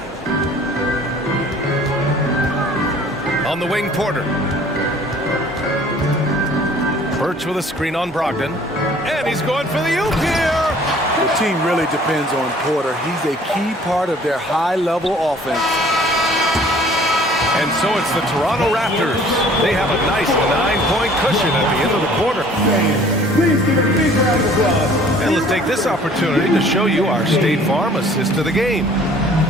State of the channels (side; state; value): both; normal; correlation 0.53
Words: On the wing, Porter. Birch with a screen on Brogdon. And he's going for the oop here. The team really depends on Porter. He's a key part of their high-level offense. And so it's the Toronto Raptors. They have a nice 9-point cushion at the end of the quarter. Please give a big round of applause. And let's take this opportunity to show you our State Farm assist of the game.